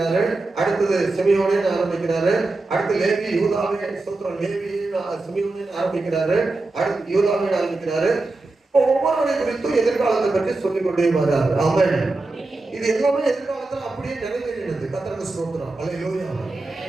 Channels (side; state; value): left; quieter; 3.2 dB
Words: அடுத்தது சிமியோனேன்னு ஆரம்பிக்கிறாரு, அடுத்து லேவி யூதாவே சூத்திரம் லேவி சிமியோனேன்னு ஆரம்பிக்கிறாரு, அடுத்து யூதாவே ஆரம்பிக்கிறாரு. ஒவ்வொருவரை குறித்தும் எதிர்காலத்தை பற்றி சொல்லிக் கொண்டே வர்றாரு. ஆமென். இது எல்லாமே எதிர்காலத்துல அப்படியே நிறைவேறினது. கர்த்தருக்கு ஸ்தோத்திரம். அல்லேலூயா.